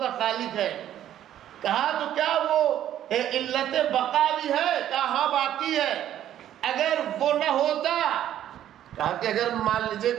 خالق ہے۔ کہا تو کیا وہ علت بقا بھی ہے؟ کہا ہاں باقی ہے۔ اگر وہ نہ ہوتا، کہا کہ اگر مان لیجئے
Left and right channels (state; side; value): quieter; left; 11.5 dB